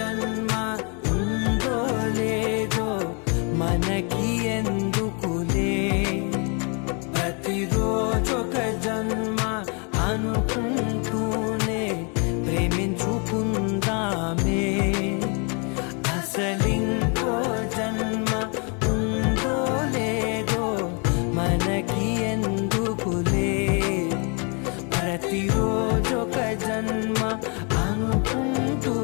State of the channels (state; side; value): quieter; right; 35.4 dB